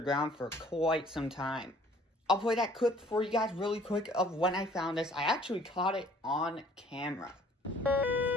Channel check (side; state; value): both; normal; correlation 0.56